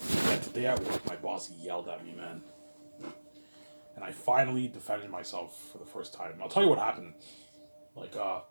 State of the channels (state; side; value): inverted; both; correlation -1.00